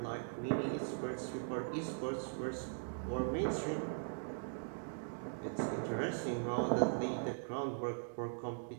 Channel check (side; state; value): left; silent; digital silence